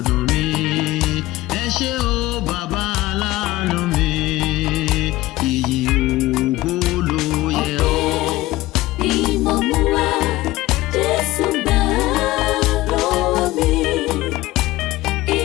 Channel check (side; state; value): right; quieter; 17.8 dB